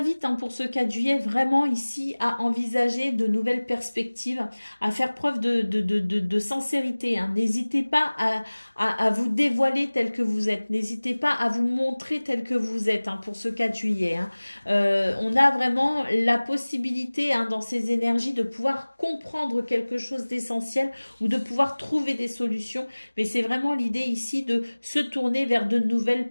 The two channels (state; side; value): inverted; both; correlation -1.00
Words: pour ce 4 juillet vraiment ici à envisager de nouvelles perspectives, à faire preuve de sincérité. Hein. N'hésitez pas à vous dévoiler tel que vous êtes. N'hésitez pas à vous montrer tel que vous êtes pour ce 4 juillet. Hein. On a vraiment la possibilité dans ces énergies de pouvoir comprendre quelque chose d'essentiel ou de pouvoir trouver des solutions. Mais c'est vraiment l'idée ici de se tourner vers de nouvelles